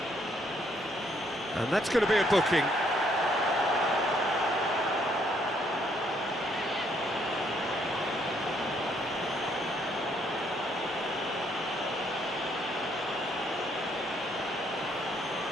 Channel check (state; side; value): normal; both; correlation 0.69